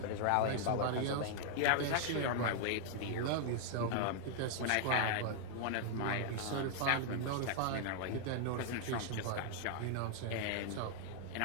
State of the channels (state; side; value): different; both; correlation 0.00